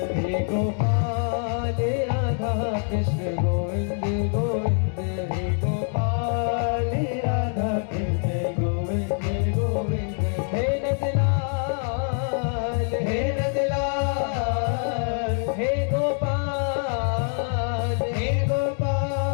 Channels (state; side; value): silent; right; 55 dB below the other